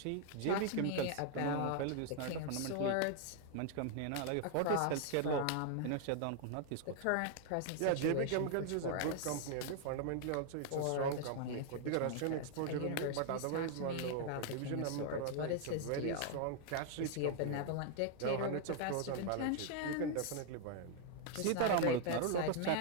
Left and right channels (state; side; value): different; both; correlation 0.00